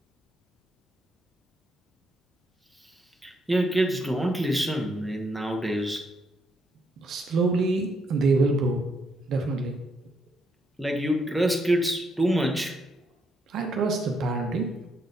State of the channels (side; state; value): both; normal; correlation 0.76